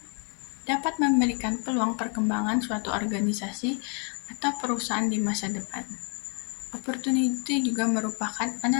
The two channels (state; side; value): quieter; right; 37.6 dB